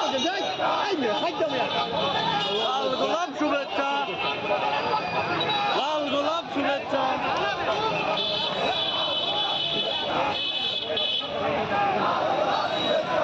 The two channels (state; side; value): identical; both; correlation 1.00